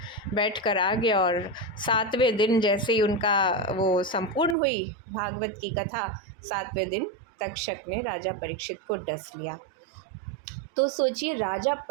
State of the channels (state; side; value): drops out; left; at 4.5 s